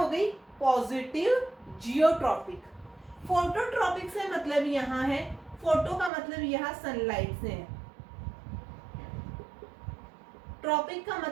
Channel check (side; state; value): left; drops out; at 6.1 s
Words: गई, पॉजिटिव जियोट्रॉपिक। फोटोट्रॉपिक से मतलब यहाँ है, फोटो का मतलब यहाँ सनलाइट से है, ट्रॉपिक का